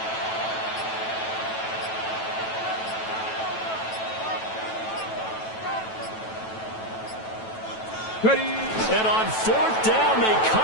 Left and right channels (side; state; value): right; late; 9.1 ms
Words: Ready. And on 4th down, they